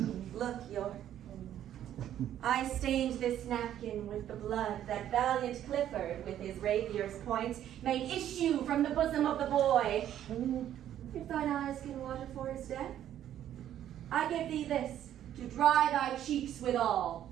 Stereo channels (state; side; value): quieter; left; 11.2 dB